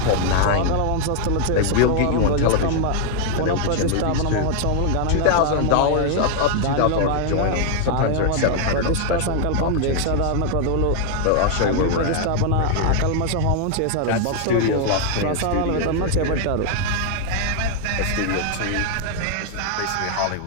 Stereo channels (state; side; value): different; both; correlation 0.00